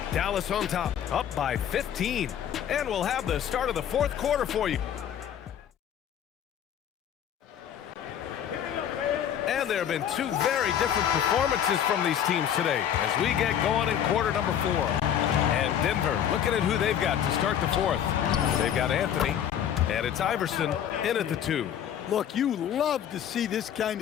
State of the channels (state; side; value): quieter; right; 9.6 dB